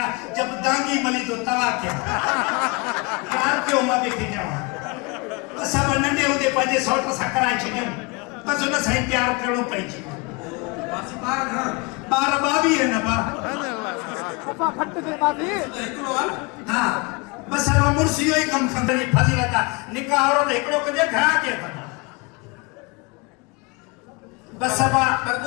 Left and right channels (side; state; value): right; quieter; 27.9 dB